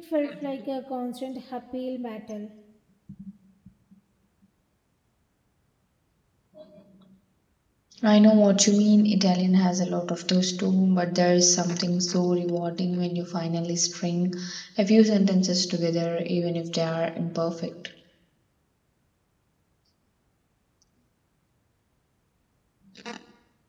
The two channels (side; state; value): both; identical; correlation 1.00